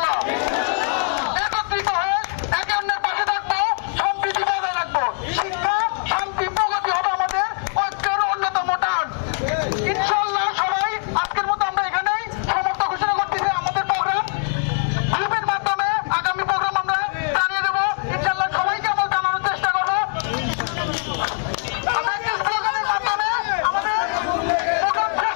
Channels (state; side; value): silent; right; 55 dB below the other